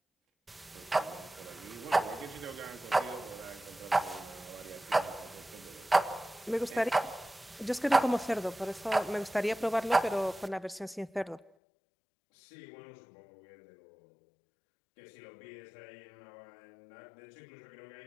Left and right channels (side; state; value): right; drops out; at 11.5 s